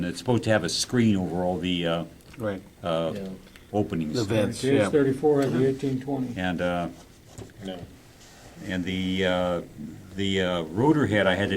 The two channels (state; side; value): identical; both; correlation 1.00